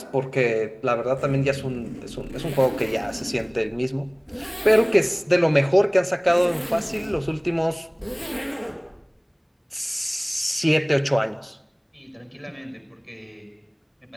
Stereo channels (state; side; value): identical; both; correlation 1.00